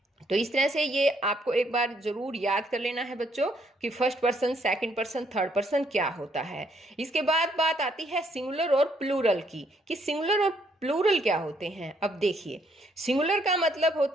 तो इस तरह से ये आपको एक बार जरूर याद कर लेना है बच्चों कि first person, second person, third person क्या होता है। इसके बाद बात आती है सिंगुलर और प्लूरल की, कि सिंगुलर और प्लूरल क्या होते हैं। अब देखिए, सिंगुलर का मतलब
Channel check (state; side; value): normal; both; correlation 0.70